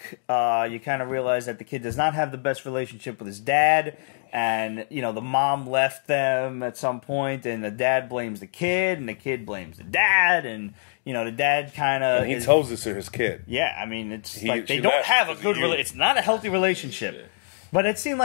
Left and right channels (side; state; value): right; silent; digital silence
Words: you kind of realize that the kid does not have the best relationship with his dad, and the mom left them at some point, and the dad blames the kid, and the kid blames the dad, and the dad kind of he tells this to his kid. Yeah, I mean, it's like they don't have a good relationship. It's not a healthy relationship. Yeah. But it seemed